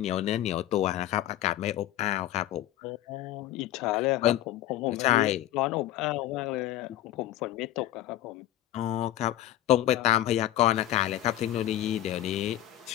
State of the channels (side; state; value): right; quieter; 13.8 dB